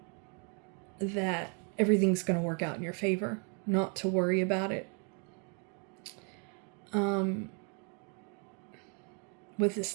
that everything's going to work out in your favor. Not to worry about it. With the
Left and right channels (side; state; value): left; quieter; 37.1 dB